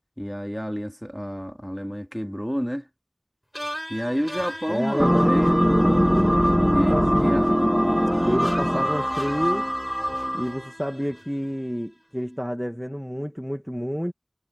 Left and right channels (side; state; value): both; identical; correlation 1.00